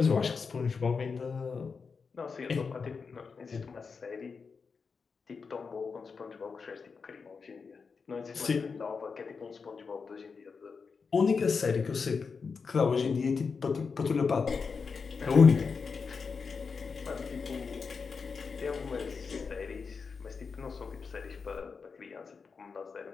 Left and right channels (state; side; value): quieter; right; 5.2 dB